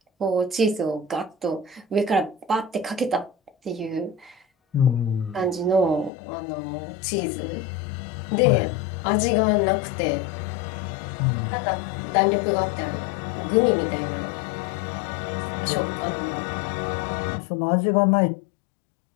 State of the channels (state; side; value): drops out; right; at 6.1 s